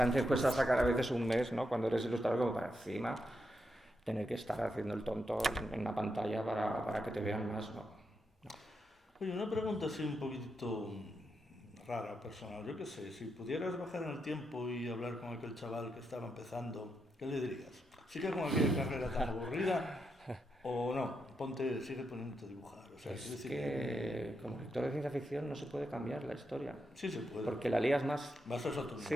cuesta sacar a veces un mes, ¿no? Cuando eres ilustrador como para encima tener que estar haciendo el tonto en una pantalla para que te vean más, ¿no? Oye, una pregunta así un poquitito rara, personal. Yo qué sé, si pudieras bajar en el tiempo y hablar con aquel chaval que estaba empezando, ¿qué le dirías? ¿Sigue con aquella carrera tan aburrida o no? Sigue poniéndote a dibujar. O sea, Es que como lector de ciencia ficción no se puede cambiar la historia. Sí se puede. Porque la lías más. Vas a otro Sí.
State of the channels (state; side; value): normal; both; correlation 0.84